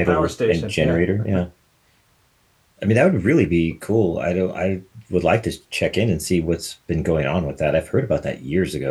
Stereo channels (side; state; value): both; identical; correlation 1.00